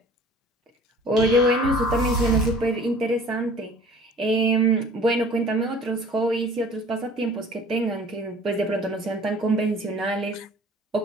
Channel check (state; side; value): normal; both; correlation 0.49